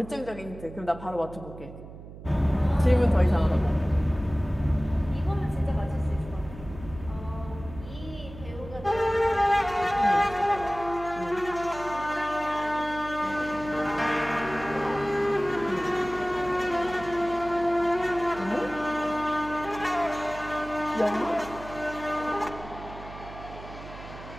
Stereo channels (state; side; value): noise; right; hum, 14 dB below the sound